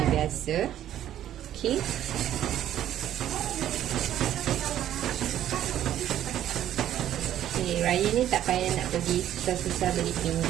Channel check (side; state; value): left; quieter; 11.6 dB